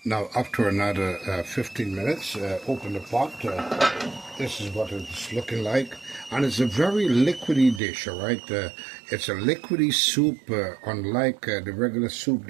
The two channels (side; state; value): left; drops out; at 7.8 s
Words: Now, after another 15 minutes, open the pot. This is what it's looking like. And it's a very liquidy dish, all right? It's a liquidy soup, unlike the regular soup